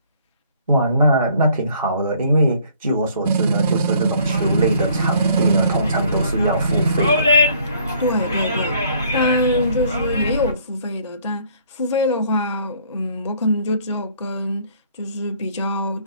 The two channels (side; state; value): both; inverted; correlation -0.60